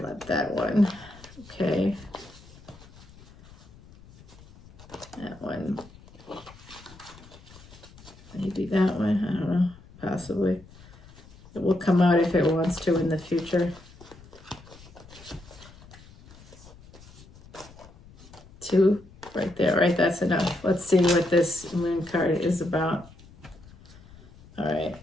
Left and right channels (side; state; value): left; noise; rumble, 22 dB below the sound